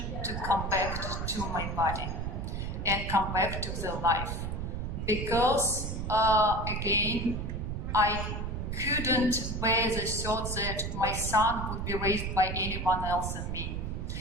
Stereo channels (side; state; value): right; noise; rumble, 3 dB below the sound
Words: to come back to my body and come back to the life. Because, again, I couldn't bear the thought that my son would be raised by anyone else than me.